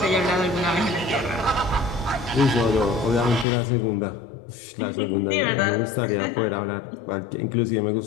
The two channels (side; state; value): right; drops out; at 3.5 s